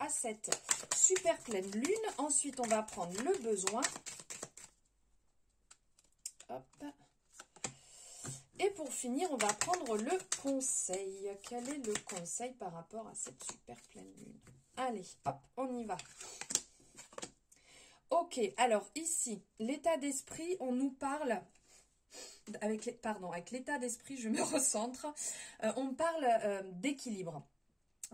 cette super pleine lune. Ensuite, on va prendre le besoin. Hop. Et pour finir, on va prendre le conseil. Quel est le conseil par rapport à cette super pleine lune? Allez, hop, on y va. Ok, alors ici, l'état d'esprit, on nous parle... avec l'état d'esprit, je me recentre. On parle d'équilibre.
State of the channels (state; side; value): identical; both; correlation 1.00